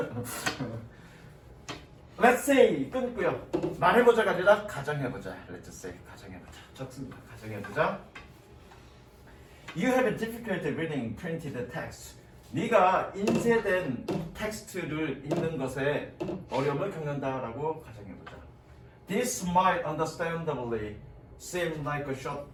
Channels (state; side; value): identical; both; correlation 1.00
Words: Let's say 끊고요. 말해보자가 아니라 가정해보자. Let's say 가정해보자. 적습니다. 가정해보자. You have a difficulty reading printed text. 네가 인쇄된 텍스트를 읽는 것에 어려움을 겪는다라고 가정해보자. This might understandably seem like a